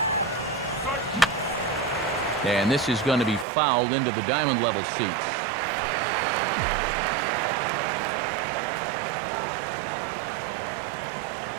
And this is going to be fouled into the diamond level seats.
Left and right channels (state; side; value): drops out; left; at 3.5 s